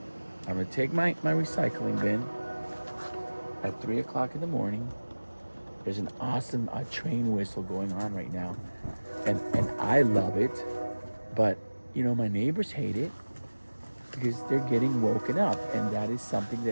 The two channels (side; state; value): both; inverted; correlation -1.00